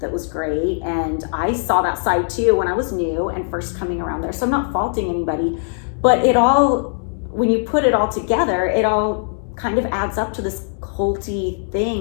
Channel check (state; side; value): silent; right; digital silence